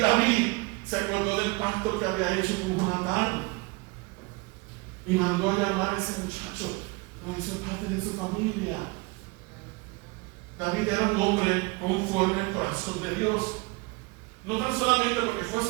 se acordó del pacto que había hecho con Jonatán y mandó a llamar a ese muchacho. Lo hizo parte de su familia. David era un hombre conforme al corazón de Dios. No tan solamente porque fue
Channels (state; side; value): quieter; left; 26.2 dB